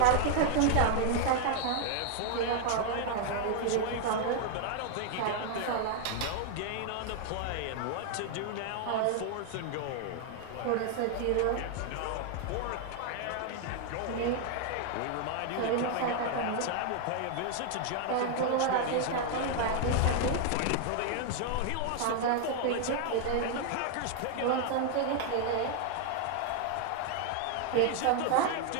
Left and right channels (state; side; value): different; both; correlation 0.00